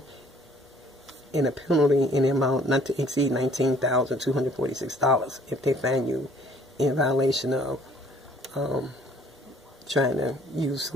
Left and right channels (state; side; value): normal; both; correlation 0.58